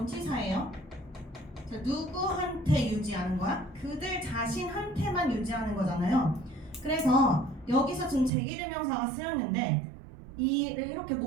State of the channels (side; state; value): left; drops out; at 8.3 s